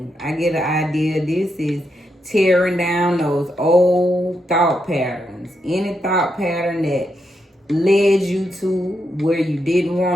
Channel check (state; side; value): normal; both; correlation 0.82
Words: I get an idea. This is tearing down those old thought patterns. Any thought pattern that led you to where you didn't